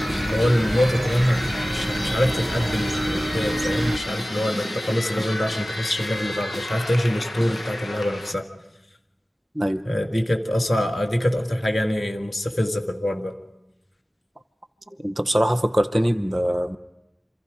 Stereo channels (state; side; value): normal; both; correlation 0.97